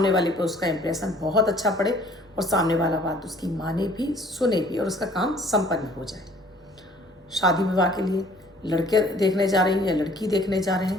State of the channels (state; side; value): normal; both; correlation 0.55